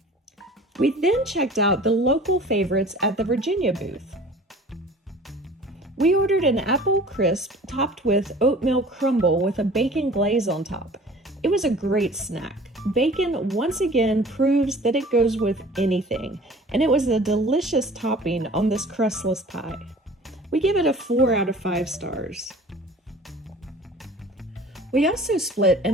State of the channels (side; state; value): both; normal; correlation 0.46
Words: We then checked out the local favorites at the Virginia booth. We ordered an apple crisp topped with oatmeal crumble with a bacon glaze on top. It was a great snack. Bacon once again proves that it goes with anything, and it was a delicious topping on this crustless pie. We give it a 4 out of 5 stars. We also split